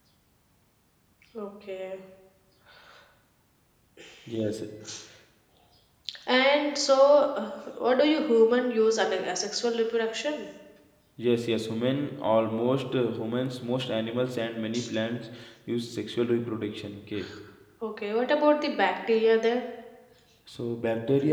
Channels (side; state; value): both; identical; correlation 1.00